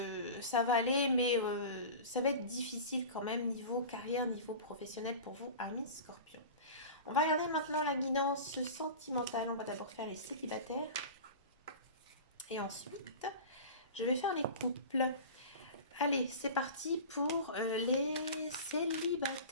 ça va aller, mais ça va être difficile quand même niveau carrière, niveau professionnel pour vous, amis Scorpion. On va regarder maintenant la guidance sentimentale. On va d'abord faire les célibataires. Et ensuite, je vais faire les couples. Allez, c'est parti pour les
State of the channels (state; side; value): inverted; both; correlation -0.33